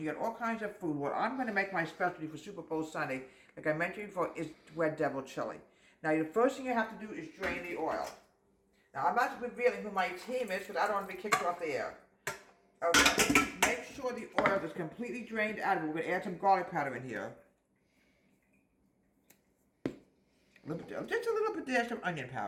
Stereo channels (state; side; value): identical; both; correlation 1.00